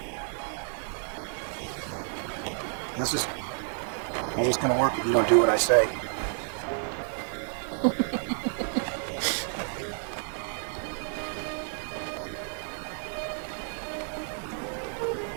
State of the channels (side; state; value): left; silent; 56 dB below the other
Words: How's this gonna work if you don't do what I say?